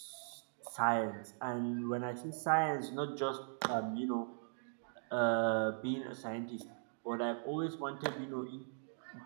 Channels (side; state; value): left; silent; digital silence